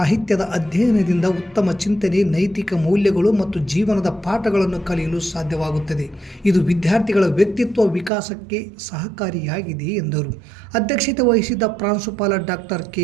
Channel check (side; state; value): left; drops out; at 8.1 s